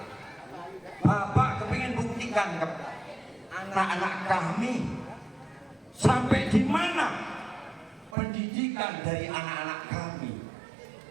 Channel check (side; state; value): left; drops out; at 8.2 s